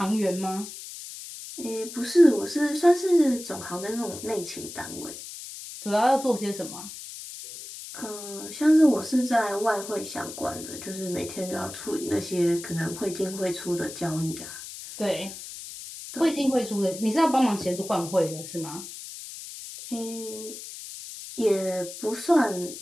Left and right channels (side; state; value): left; noise; hiss, 12 dB below the sound